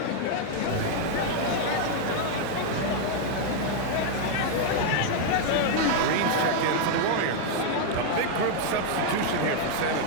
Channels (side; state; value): both; different; correlation 0.00